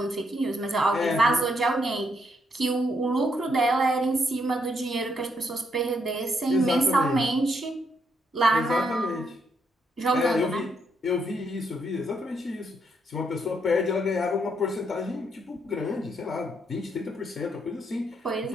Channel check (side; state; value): both; normal; correlation 0.75